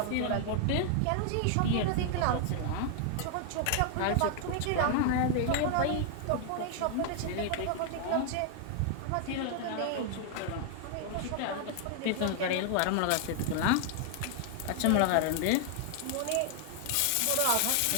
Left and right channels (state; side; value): different; both; correlation 0.00